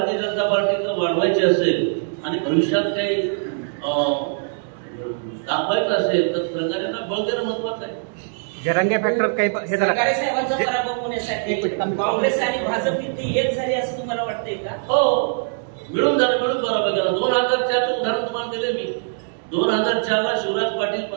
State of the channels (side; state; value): left; silent; digital silence